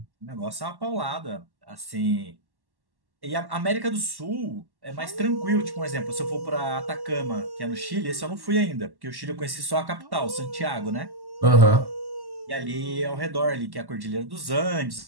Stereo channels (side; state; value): left; late; 1.1 ms